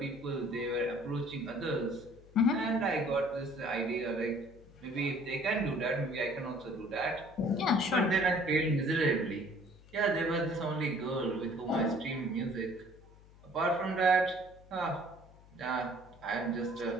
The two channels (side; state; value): left; noise; hum, 23 dB below the sound